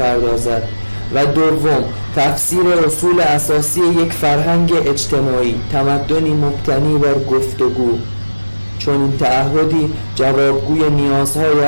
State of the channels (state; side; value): inverted; both; correlation -1.00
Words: و دوم، تفسیر اصول اساسی یک فرهنگ اجتماعی، تمدنی مبتنی بر گفتگو. چون این تعهدی جوابگوی نیازهای